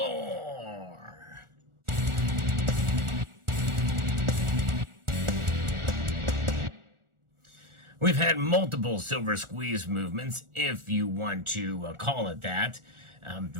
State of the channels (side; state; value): left; late; 1.4 ms